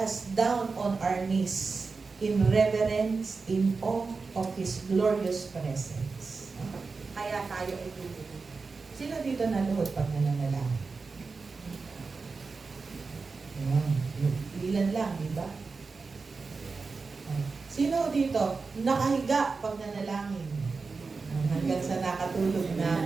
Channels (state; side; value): quieter; left; 4.4 dB